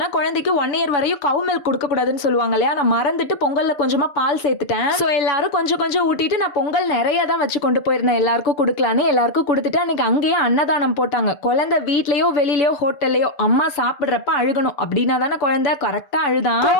குழந்தைக்கு 1 இயர் வரையும் கவு மில்க் கொடுக்க கூடாதுன்னு சொல்லுவாங்க இல்லையா. நான் மறந்துட்டு பொங்கல்ல கொஞ்சமா பால் சேர்த்துட்டேன். சோ எல்லாரும் கொஞ்சம் கொஞ்சம் ஊட்டிட்டு நான் பொங்கல் நிறைய தான் வச்சு கொண்டு போயிருந்தேன். எல்லாருக்கும் கொடுக்கலான்னு எல்லாருக்கும் கொடுத்துட்டு அன்னைக்கு அங்கேயே அன்னதானம் போட்டாங்க. குழந்தை வீட்லயோ வெளியிலயோ ஹோட்டல்லையோ அம்மா சாப்பிடுறப்ப அழுகணும் அப்படின்னா தானே குழந்தை கரெக்டா அழுதான்.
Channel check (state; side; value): late; right; 6.8 ms